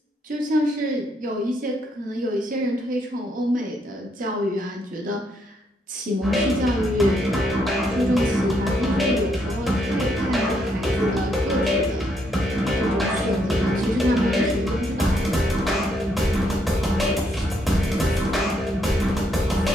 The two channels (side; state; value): both; normal; correlation 0.74